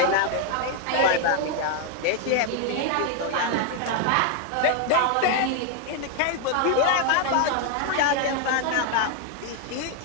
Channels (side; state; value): both; different; correlation 0.00